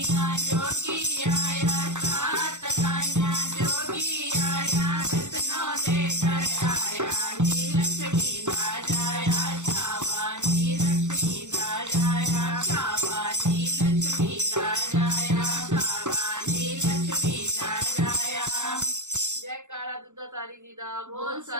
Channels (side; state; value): left; late; 0.84 ms